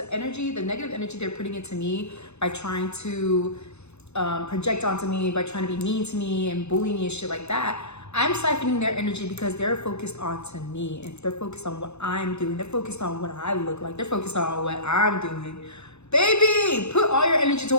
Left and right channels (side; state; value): right; late; 0.81 ms